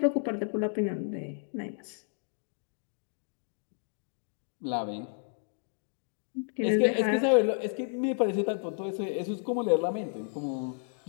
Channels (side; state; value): right; silent; 57 dB below the other